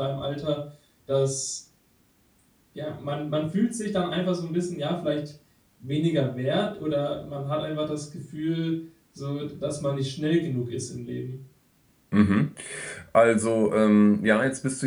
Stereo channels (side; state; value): both; identical; correlation 1.00